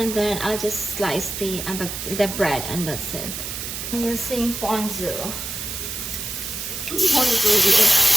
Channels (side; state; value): right; noise; hiss, 6 dB below the sound